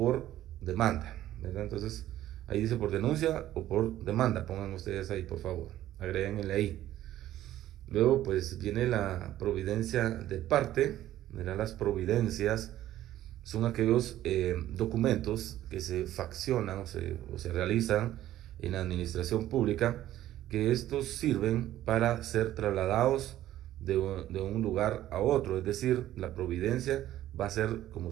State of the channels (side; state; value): left; quieter; 13.4 dB